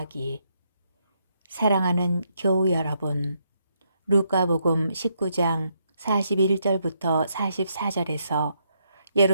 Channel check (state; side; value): inverted; both; correlation -0.76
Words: 사랑하는 교우 여러분, 루카복음 19장 41절부터 44절에서